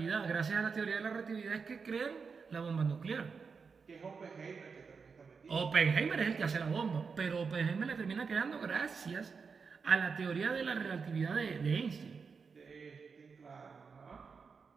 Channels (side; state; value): left; quieter; 5.4 dB